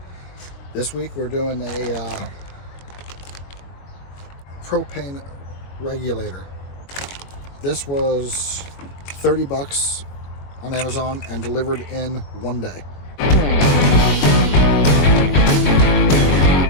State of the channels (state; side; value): late; right; 22 ms